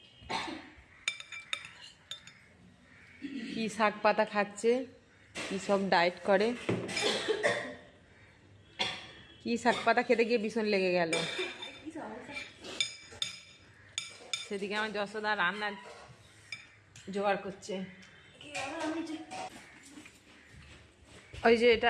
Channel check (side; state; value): both; identical; correlation 1.00